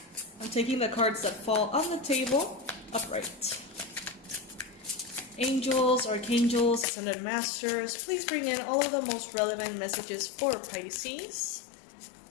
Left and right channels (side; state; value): right; drops out; at 6.9 s